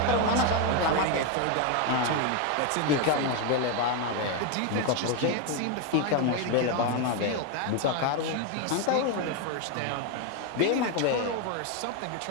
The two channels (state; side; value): different; both; correlation 0.02